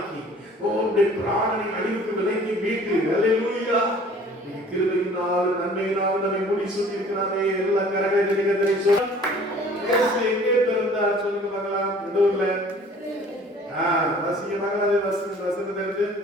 உங்களுடைய பிராணனை அழிவுக்கு விலைக்கு மீட்டு. ஹல்லேலூயா. கிருபையினால் நன்மையினால் நம்மை மூடி சூட்டி இருக்கிறாரே. எல்லா கரங்களை சொல்ல எங்கே பிறந்தார் சொல்லுங்க பார்க்கலாம். எந்த ஊர்ல? வாசிக்க பார்க்கலாம். வசனத்தை எடுத்து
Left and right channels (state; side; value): normal; both; correlation 0.51